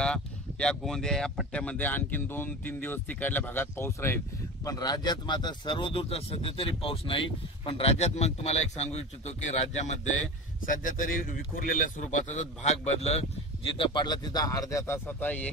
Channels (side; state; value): both; normal; correlation 0.30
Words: या गोंदिया या पट्ट्यामध्ये आणखीन 2-3 दिवस तिकडल्या भागात पाऊस राहील। पण राज्यात मात्र सर्वदूरचा सध्या तरी पाऊस नाही। पण राज्यात मग तुम्हाला एक सांगू इच्छितो की राज्यामध्ये सध्या तरी विखुरलेल्या स्वरूपाचा भाग बदल जिथं पडला तिथं अर्ध्या तासाचा,